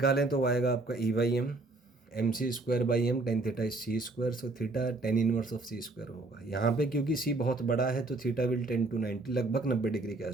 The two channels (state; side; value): quieter; left; 3.1 dB